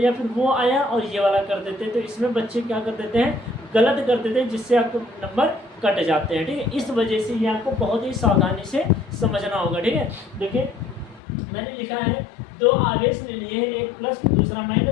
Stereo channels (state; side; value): drops out; right; at 11.2 s